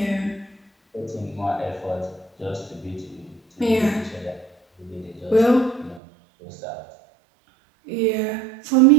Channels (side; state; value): left; drops out; at 6.0 s